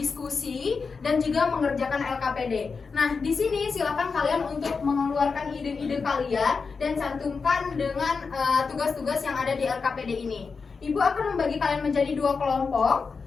dan juga mengerjakan LKPD. Nah, di sini silakan kalian untuk mengeluarkan ide-ide kalian dan cantumkan dengan tugas-tugas yang ada di LKPD ini. Ibu akan membagi kalian menjadi 2 kelompok.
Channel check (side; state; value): right; quieter; 4.9 dB